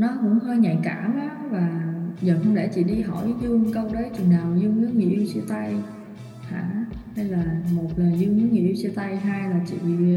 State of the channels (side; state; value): both; identical; correlation 1.00